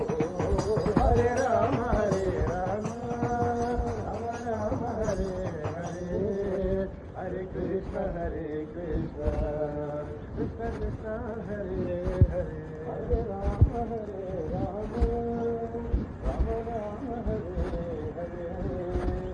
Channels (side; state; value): both; identical; correlation 1.00